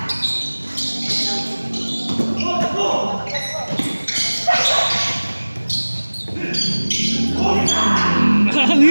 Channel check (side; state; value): both; inverted; correlation -1.00